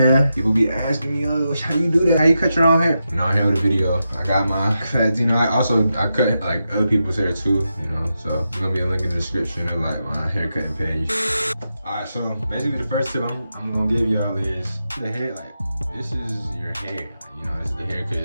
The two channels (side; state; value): both; inverted; correlation -0.88